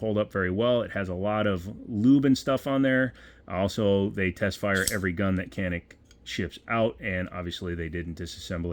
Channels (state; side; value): identical; both; correlation 1.00